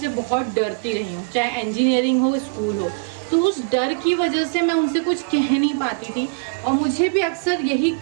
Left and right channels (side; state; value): left; quieter; 35.0 dB